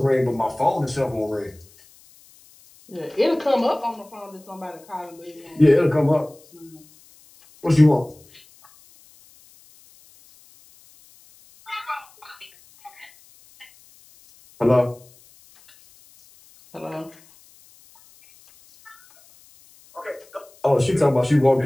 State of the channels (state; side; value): noise; left; hiss, 27 dB below the sound